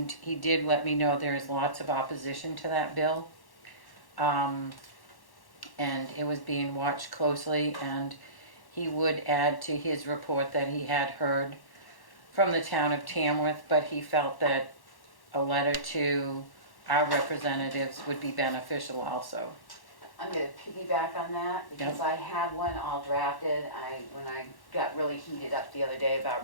he did let me know there is lots of opposition to that bill. And it was being watched closely, and he would add to his report that he had heard from the town of Tamworth, but he felt that a letter to our representatives would be beneficial also. I'm gonna piggyback on that because I had one all drafted. When I got really heated up the other day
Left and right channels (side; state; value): right; late; 1.1 ms